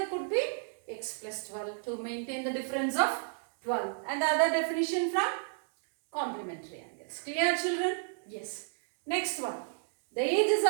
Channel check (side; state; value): left; silent; digital silence